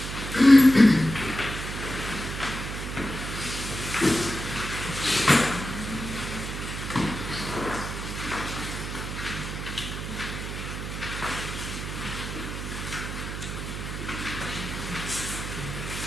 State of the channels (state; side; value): noise; right; hum, 6 dB below the sound